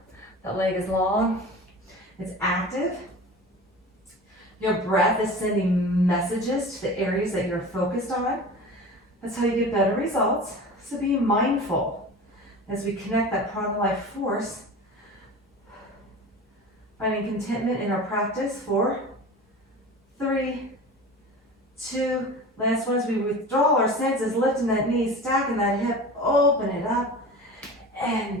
That leg is long, it's active. Your breath is sending messages to the areas that you're focused on. That's how you get better results. So be mindful as we connect that prana life force. Finding contentment in our practice. 4, 3, 2, last one as we withdraw our senses, lifting that knee, stacking that hip, open it up,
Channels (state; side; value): normal; both; correlation 0.35